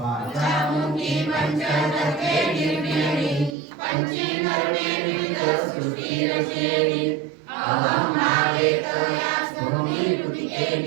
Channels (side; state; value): left; drops out; at 3.6 s